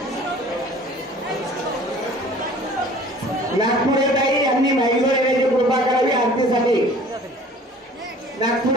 नागपुरे ताई यांनी महिला येण्याची कृपा करावी आरतीसाठी.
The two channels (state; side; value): normal; both; correlation 0.48